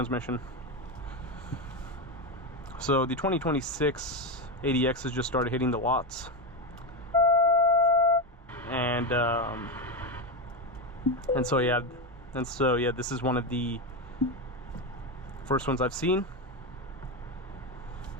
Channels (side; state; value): both; normal; correlation 0.12